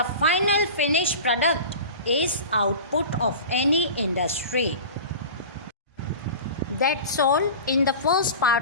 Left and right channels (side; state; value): both; inverted; correlation -0.34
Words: final finished product is output of any industry. That's all in the first